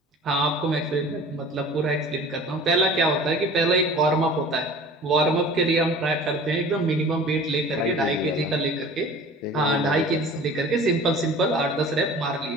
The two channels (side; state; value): both; normal; correlation 0.43